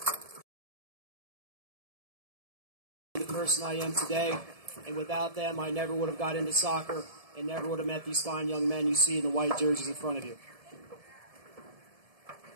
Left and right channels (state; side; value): late; left; 1.7 ms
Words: the person I am today, and without them I never would have got into soccer and never would have met these fine young men you see in the white jerseys in front of you.